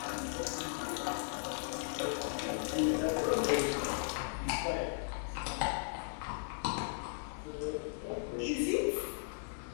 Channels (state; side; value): silent; right; digital silence